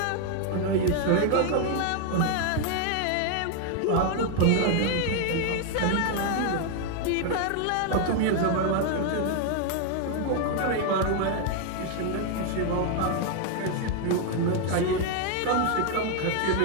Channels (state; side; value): different; both; correlation 0.01